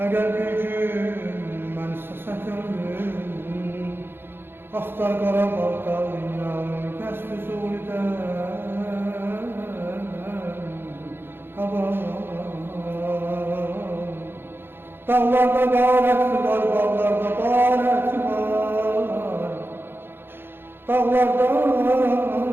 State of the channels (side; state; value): left; late; 0.10 ms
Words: bir gün ben istesek ömrüm, Axtar Qarabağ dağıyam, kəsb zulüdən havam. Dağlarda qarəti var, bağlarda qarəti var. Dağlarda